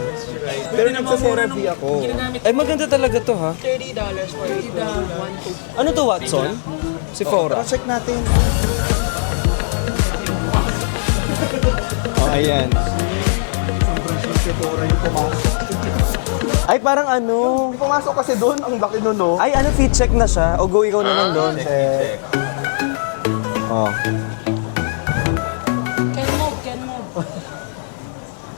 Pero nagsa-CeraVe ako. Ay, maganda talaga to ha. $30 for a 12. 1, 2. Ano to, Watson? Si Oh, Fora. tara check natin. Ayan. Si Tora yung pumasok. Ay, parang ano. May pumasok kasi doon, ang laki nun, no? Ay, ano, fit check na siya? O go ikaw naman doon? Check. Oh. Can move, can move.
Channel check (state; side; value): silent; right; 65 dB below the other